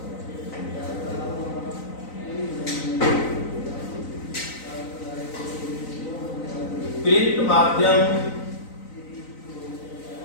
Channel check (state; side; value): late; right; 3.9 ms